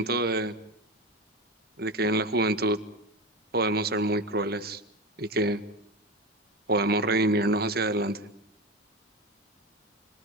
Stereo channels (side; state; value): both; normal; correlation 0.22